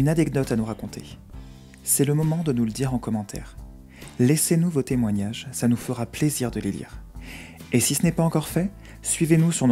anecdote à nous raconter? C'est le moment de nous le dire en commentaire. Laissez-nous vos témoignages, ça nous fera plaisir de les lire. Et si ce n'est pas encore fait, suivez-nous sur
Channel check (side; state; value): both; identical; correlation 1.00